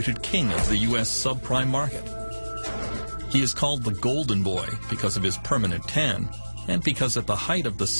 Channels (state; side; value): inverted; both; correlation -1.00